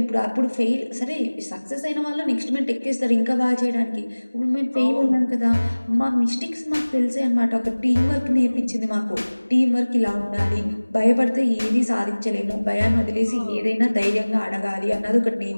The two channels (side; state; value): both; inverted; correlation -1.00